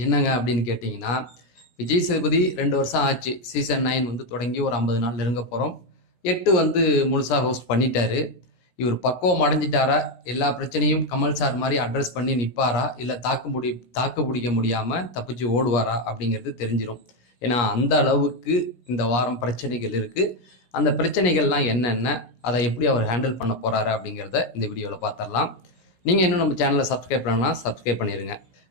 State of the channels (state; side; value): late; right; 17 ms